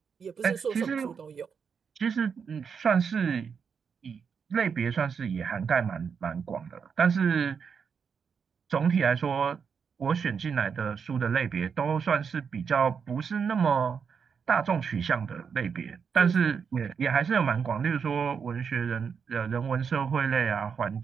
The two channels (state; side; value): quieter; left; 6.4 dB